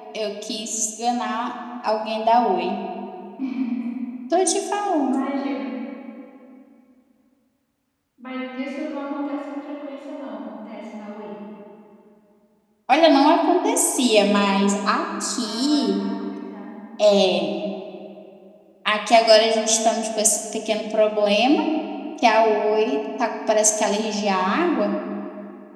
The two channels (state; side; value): identical; both; correlation 1.00